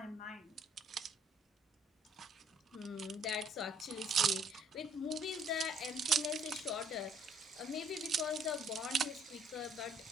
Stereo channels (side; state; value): both; normal; correlation 0.63